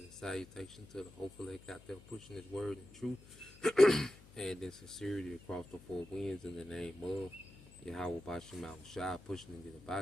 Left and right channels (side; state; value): left; noise; hum, 21 dB below the sound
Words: salutation to the hopeful that got there pushing his word in truth and in sincerity across the four winds in the name of Yahweh Bashem Al Shah, pushing to get